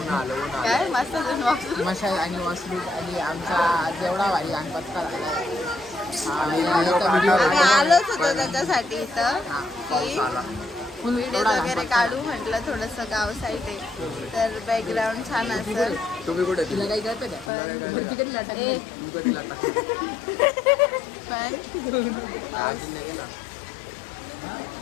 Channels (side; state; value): right; drops out; at 17.5 s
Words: काय मस्त वापरून मशाज आणि वॉशरूम आणि आमचा जेवढा भारी गणपती झाला आम्ही आलोच होतो त्याच्यासाठी इथं की व्हिडिओ वगैरे काढू म्हटलं थोडंसं गाव साईड आहे तर बॅकग्राऊंड छान असेल. तुम्ही कुठे तिला काही करते पण